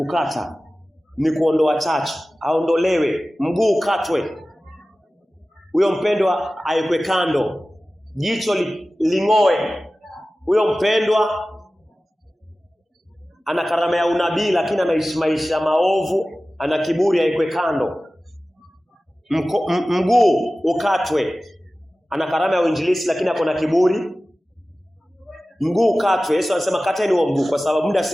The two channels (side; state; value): both; normal; correlation 0.96